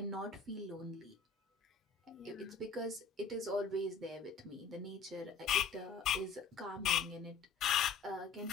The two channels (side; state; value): right; quieter; 5.3 dB